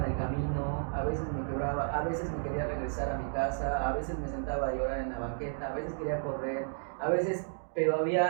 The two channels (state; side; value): silent; left; digital silence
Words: en el camino, a veces me quebraba, a veces me quería regresar a mi casa, a veces me sentaba a llorar en la banqueta, a veces quería correr, pero